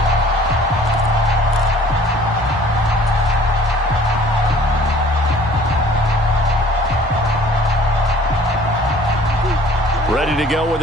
Ready to go with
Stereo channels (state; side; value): normal; both; correlation 0.53